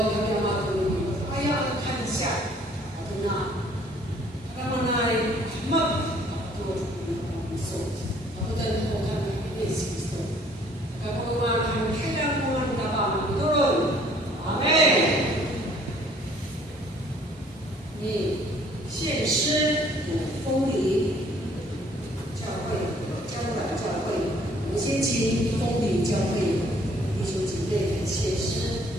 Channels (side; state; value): both; normal; correlation 0.59